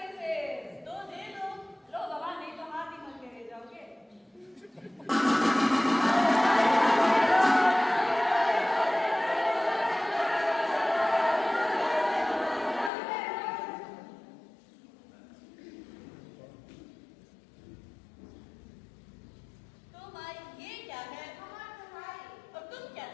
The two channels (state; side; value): drops out; right; at 12.9 s